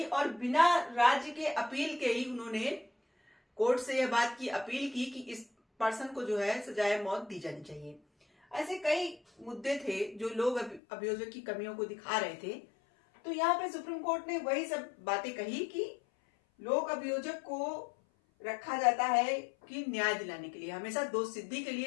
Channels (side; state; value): right; drops out; at 10.8 s